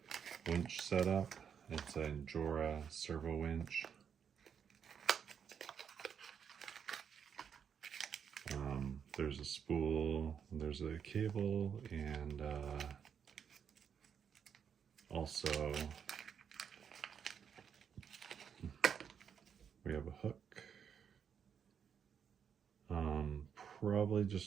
winch setup. It's an Injora servo winch. There's a spool, there's a cable, and also we have a hook. Probably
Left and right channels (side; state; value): left; quieter; 7.5 dB